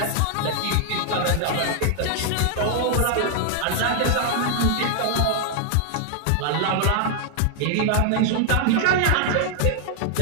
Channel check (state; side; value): different; both; correlation 0.00